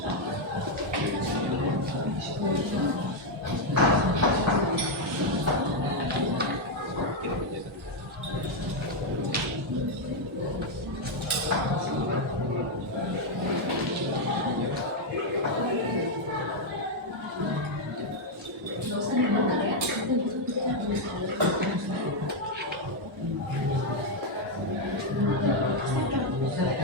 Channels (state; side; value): normal; both; correlation 0.01